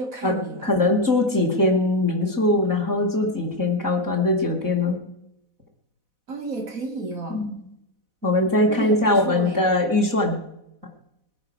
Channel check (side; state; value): left; late; 4.0 ms